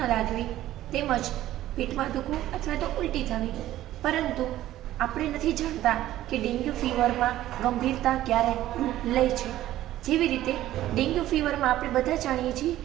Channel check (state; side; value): quieter; left; 14.0 dB